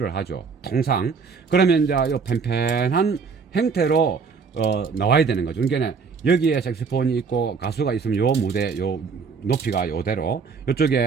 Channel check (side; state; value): left; quieter; 5.3 dB